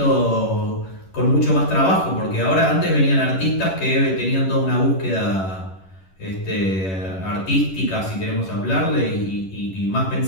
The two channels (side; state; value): right; late; 11 ms